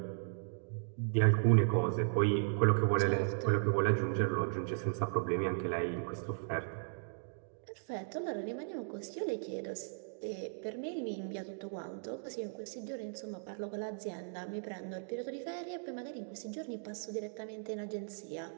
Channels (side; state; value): left; silent; digital silence